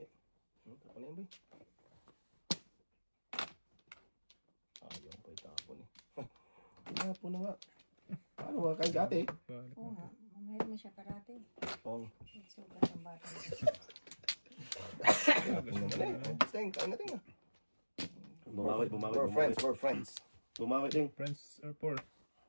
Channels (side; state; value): both; inverted; correlation -1.00